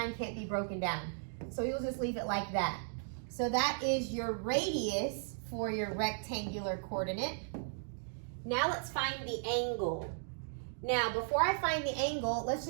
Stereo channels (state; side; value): silent; left; digital silence